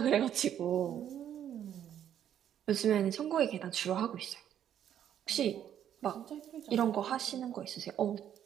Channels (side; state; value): left; quieter; 10.0 dB